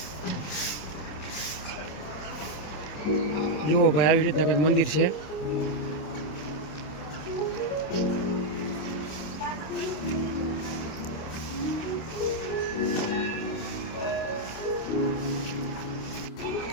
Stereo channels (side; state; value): right; late; 26 ms